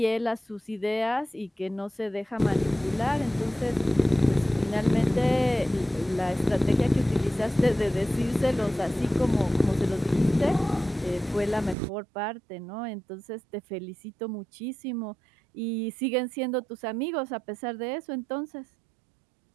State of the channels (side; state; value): left; drops out; at 11.8 s